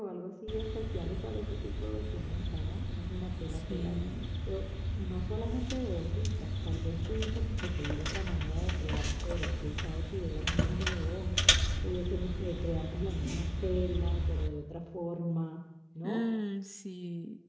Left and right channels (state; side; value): identical; both; correlation 1.00